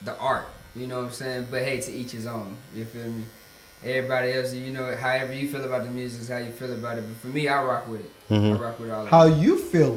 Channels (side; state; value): both; identical; correlation 1.00